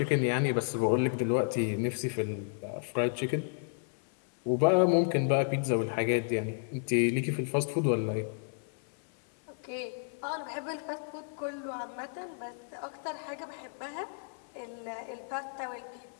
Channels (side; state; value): right; silent; 56 dB below the other